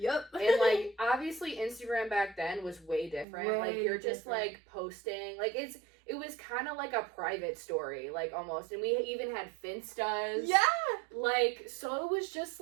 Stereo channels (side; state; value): left; drops out; at 3.2 s